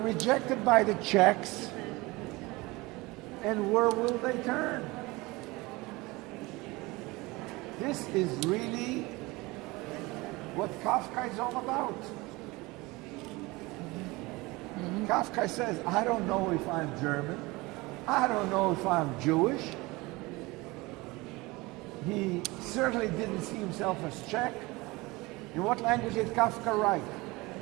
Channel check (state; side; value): quieter; left; 22.6 dB